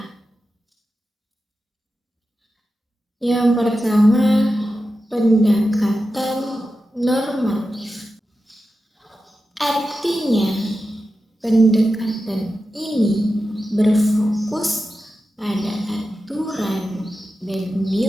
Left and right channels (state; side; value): normal; both; correlation 0.92